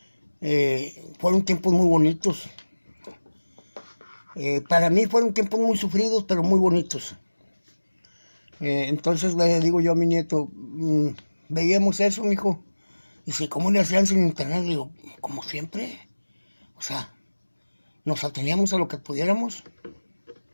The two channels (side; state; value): both; inverted; correlation -1.00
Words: Fueron tiempos muy bonitos. Para mí fueron tiempos muy sufridos, pero muy bonitos. Entonces le digo yo a mi nieto, veíamos eso, mijo. Dice, ¿cómo le hacían sin internet? Le digo, como siempre. O sea, nos ateníamos a lo que pudiéramos.